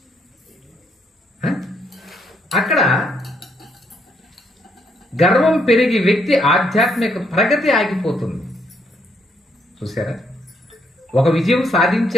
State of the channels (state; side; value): normal; both; correlation 0.73